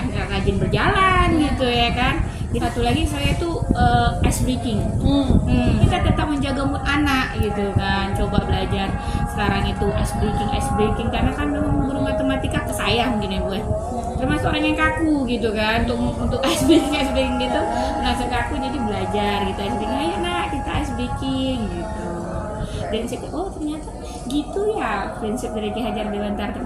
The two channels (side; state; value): both; identical; correlation 1.00